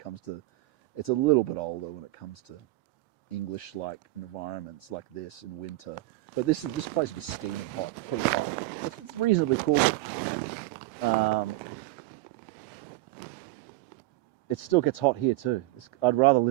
to, it's a little bit older when it comes to English-like environments like this in winter. But this place would be steaming hot, pretty hot. It's reasonably cool, but it still gets hot here too. I'd rather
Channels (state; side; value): quieter; left; 19.0 dB